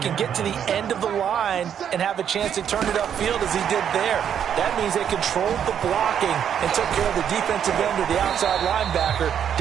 get to the end of the line and have a chance to turn it upfield as he did there. That means they controlled the blocking and took care of the defensive end or the outside linebacker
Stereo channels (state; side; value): quieter; left; 8.8 dB